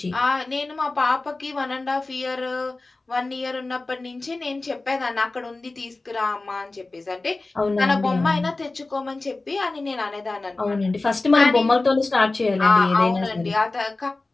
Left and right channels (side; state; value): right; quieter; 3.3 dB